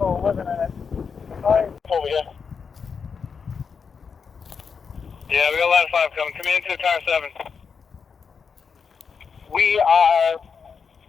are living in it. Hi. Over here. Yeah, we got line 5 coming. Command to car 7. We are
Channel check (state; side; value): quieter; right; 5.9 dB